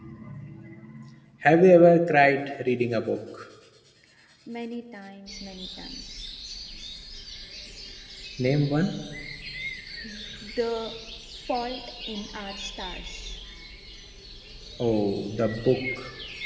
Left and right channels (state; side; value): identical; both; correlation 1.00